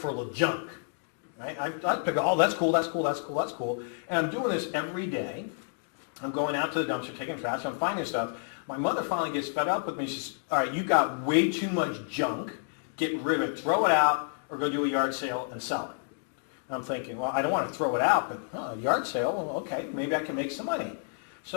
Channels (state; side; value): silent; right; digital silence